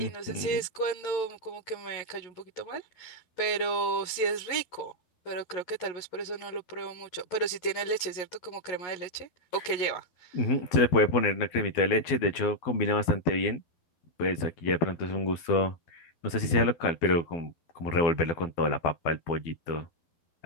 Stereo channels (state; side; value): late; right; 12 ms